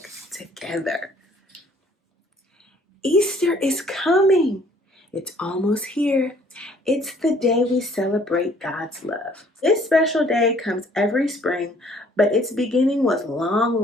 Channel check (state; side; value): normal; both; correlation 0.59